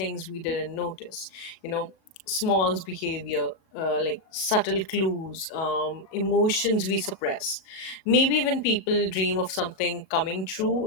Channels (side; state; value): right; late; 37 ms